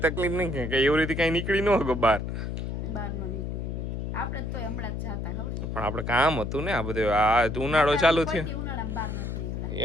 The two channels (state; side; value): noise; left; hum, 4 dB below the sound